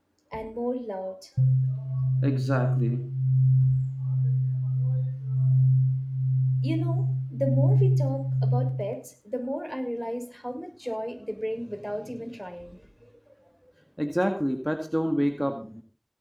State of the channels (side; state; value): both; identical; correlation 1.00